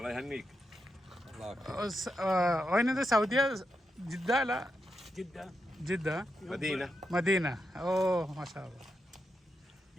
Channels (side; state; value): both; normal; correlation 0.86